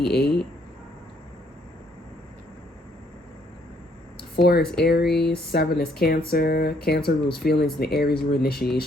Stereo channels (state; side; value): normal; both; correlation 0.68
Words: 4 is Aries, 7 is Cancer. Cancer rules feelings, and the Aries rule